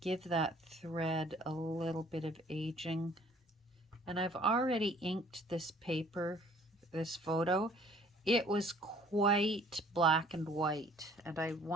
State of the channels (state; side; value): normal; both; correlation 0.56